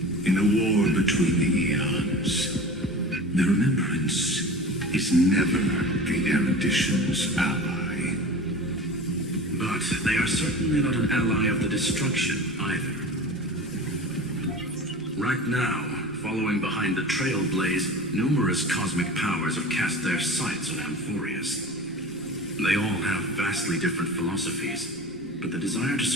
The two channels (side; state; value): both; normal; correlation 0.35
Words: In the war between the eons, the remembrance is never the erudition's ally. But they are certainly not an ally of the destruction either. Right now, following behind the Trailblaze, numerous cosmic powers have cast their sights on Amphoreus. They all have vastly different philosophies, but the desire to